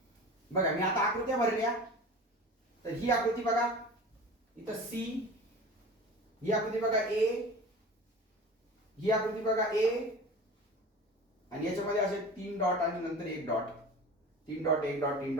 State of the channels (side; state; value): both; normal; correlation 0.36